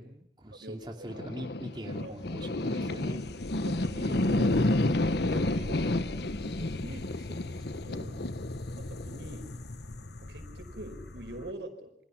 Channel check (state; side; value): normal; both; correlation 0.64